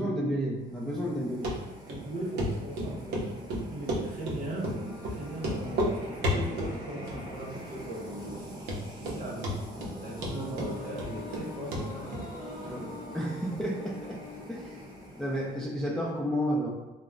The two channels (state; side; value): normal; both; correlation 0.57